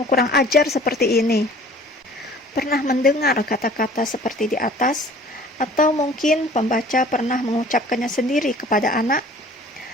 kurang ajar seperti ini. Pernah mendengar kata-kata seperti di atas? Atau mungkin pembaca pernah mengucapkannya sendiri kepada anak?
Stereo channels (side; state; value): both; normal; correlation 0.49